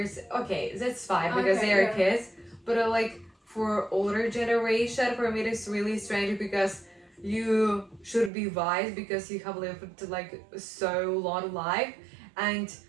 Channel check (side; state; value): left; drops out; at 8.3 s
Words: okay, that's fine because Okay, they are yeah. kids. But like for older generation, for me it's really strange because you should be wise because you have lived like so long life, and